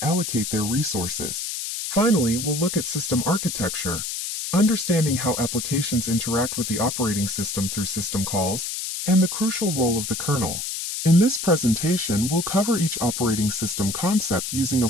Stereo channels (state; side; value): noise; left; hiss, 4 dB below the sound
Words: allocate their resources. Finally, we'll look at system architecture, understanding how applications interact with the operating system through system calls, and the crucial role of the kernel. In this presentation, we'll cover each operating system concept using a